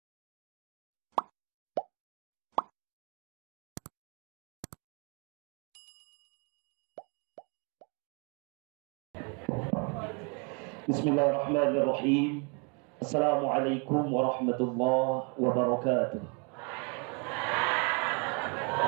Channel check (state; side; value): quieter; left; 34.8 dB